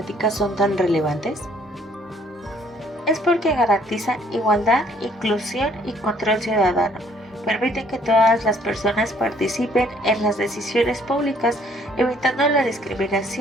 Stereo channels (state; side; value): normal; both; correlation 0.62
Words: son tan relevantes? Es porque garantizan igualdad, inclusión y control ciudadano. Permiten que todas las personas participen en las decisiones públicas, evitando la